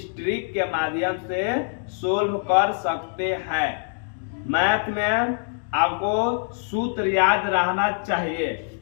ट्रिक के माध्यम से सोल्व कर सकते हैं। मैथ में आपको सूत्र याद रहना चाहिए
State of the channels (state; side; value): silent; right; 62 dB below the other